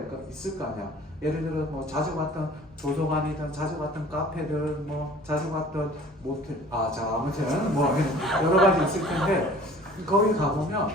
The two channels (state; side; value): normal; both; correlation 0.48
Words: 있을 거 아니야. 예를 들어 뭐 자주 갔던 도서관이든 자주 갔던 카페든 뭐 자주 갔던 모텔 아무튼 뭐 여러 가지 있을 텐데 거기 가면